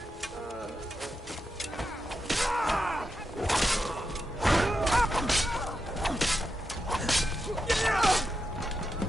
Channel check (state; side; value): normal; both; correlation 0.87